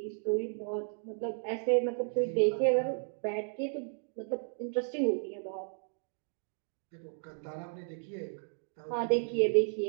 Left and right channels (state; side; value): silent; left; 55 dB below the other